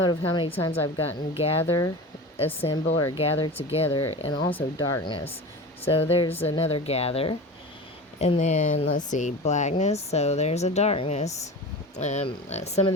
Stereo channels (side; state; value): both; normal; correlation 0.32